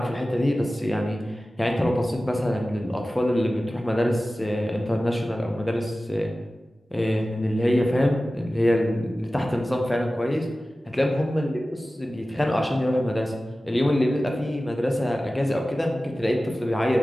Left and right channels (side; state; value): both; normal; correlation 0.96